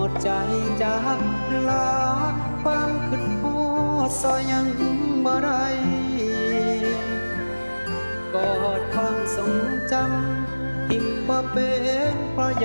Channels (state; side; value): inverted; both; correlation -1.00